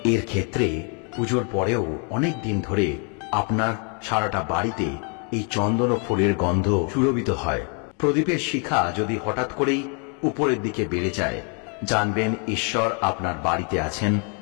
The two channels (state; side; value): quieter; right; 37.5 dB